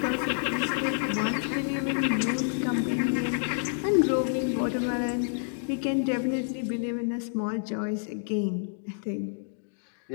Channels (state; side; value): silent; right; digital silence